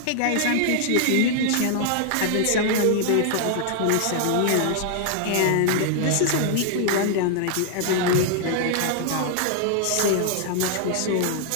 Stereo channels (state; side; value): different; both; correlation 0.00